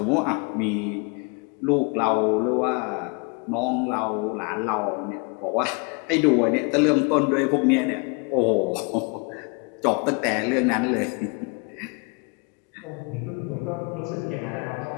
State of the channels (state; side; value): quieter; right; 33.1 dB